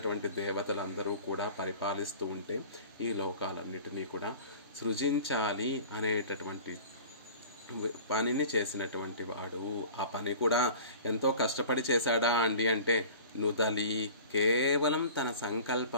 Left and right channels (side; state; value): both; inverted; correlation -0.42